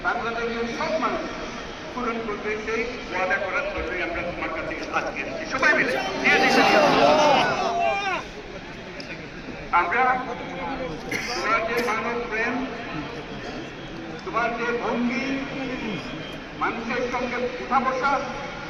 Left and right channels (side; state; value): both; identical; correlation 1.00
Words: বাংলাদেশের সব মানুষ পূরণ করবে। সেই ওয়াদা করার জন্যই আমরা তোমার কাছে আজকে সবাই মিলে আমরা তোমার যে মানব প্রেম, তোমার যে ভঙ্গি, মানুষের সঙ্গে উঠা বসা,